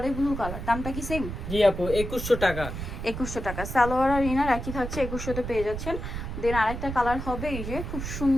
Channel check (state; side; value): noise; right; rumble, 6 dB below the sound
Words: ব্লু কালার, দামটা কি সেম? জি আপু 2100 টাকা 2100 টাকা। সালোয়ার আর ইনার একই থাকছে, 2100 তে পেয়ে যাচ্ছেন। দেন আরেকটা কালার হবে এই যে খুব